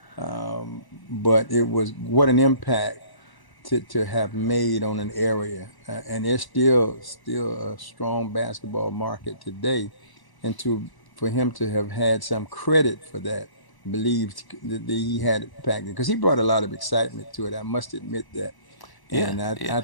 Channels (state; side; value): late; right; 1.0 ms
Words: but it was what an impact to have made on an area, and there's still a strong basketball market today, and to for him to have had some credit for that, believed that he had impact because he brought a lot of excitement to it. I must admit that, yeah, and yeah. I